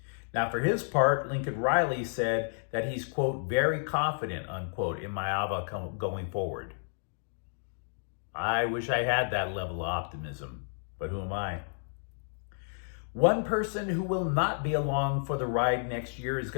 Now, for his part, Lincoln Riley said that he's, quote, very confident, unquote, in Maava going forward. I wish I had that level of optimism, but who am I? One person who will not be along for the ride next year is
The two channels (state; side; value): silent; right; digital silence